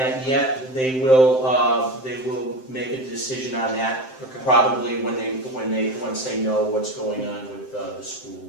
yet. They will make a decision on that Okay. probably once they know what's going on with the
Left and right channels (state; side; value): late; right; 7.7 ms